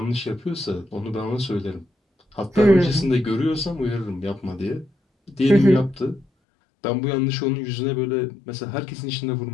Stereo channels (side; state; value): right; drops out; at 6.2 s